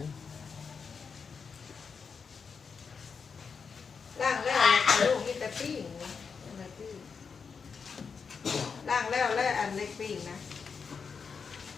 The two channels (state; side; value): quieter; right; 5.7 dB